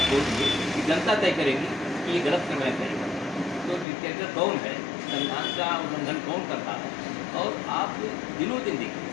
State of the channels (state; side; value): drops out; right; at 3.9 s